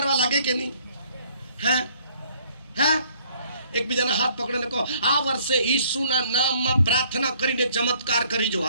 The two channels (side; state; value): both; inverted; correlation -0.61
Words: લાગે કે નહીં? હે? હે? એકબીજાના હાથ પકડીને કહો, આ વર્ષે ઈસુના નામમાં પ્રાર્થના કરીને ચમત્કાર કરીજો.